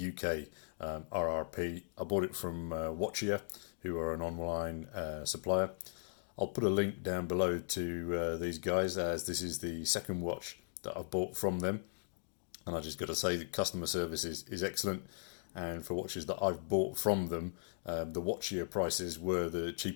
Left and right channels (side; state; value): right; silent; digital silence